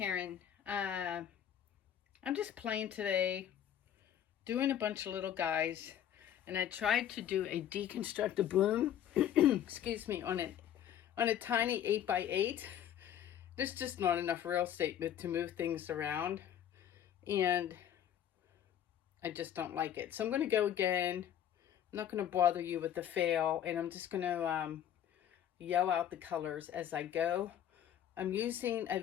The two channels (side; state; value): right; quieter; 10.2 dB